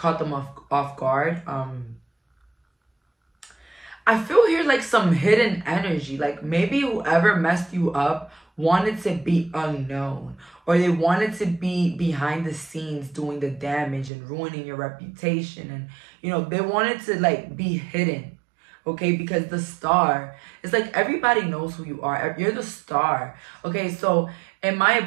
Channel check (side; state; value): left; drops out; at 14.1 s